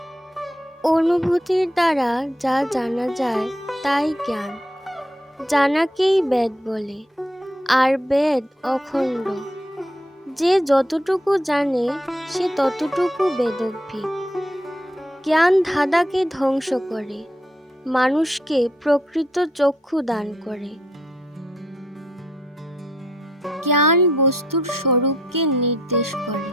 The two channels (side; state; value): both; normal; correlation 0.72